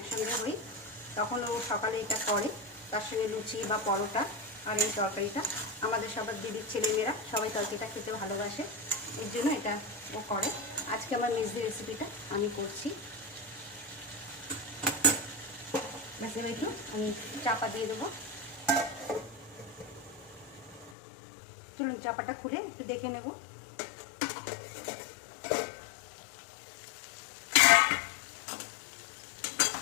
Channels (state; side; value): drops out; right; at 20.9 s